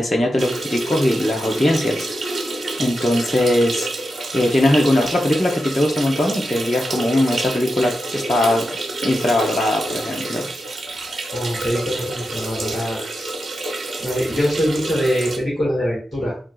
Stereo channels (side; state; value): both; normal; correlation 0.89